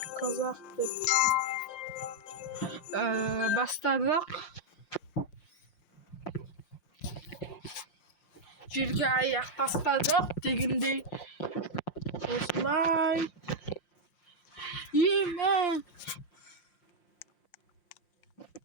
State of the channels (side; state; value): right; late; 5.7 ms